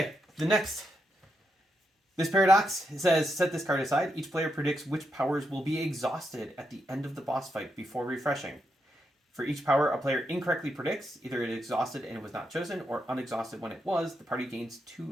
the next. This paradox says, set this card aside. Each player predicts which powers will be exhausted at the end of the boss fight before refreshing. For each power a player incorrectly predicts, either it exhausted and it was not chosen, or unexhausted when it was, the party gains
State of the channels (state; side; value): normal; both; correlation 0.82